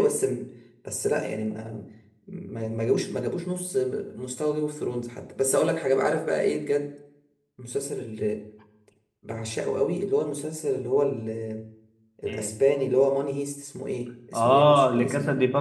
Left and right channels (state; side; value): identical; both; correlation 1.00